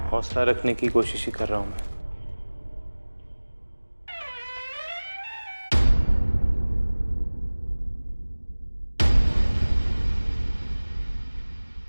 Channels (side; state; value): both; inverted; correlation -1.00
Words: हौसला रखने की कोशिश ही कर रहा हूं मैं।